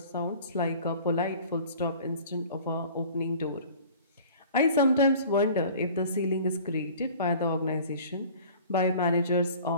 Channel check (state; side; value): inverted; both; correlation -0.46